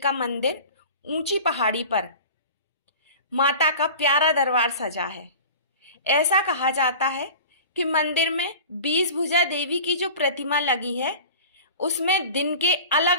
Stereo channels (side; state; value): both; inverted; correlation -0.38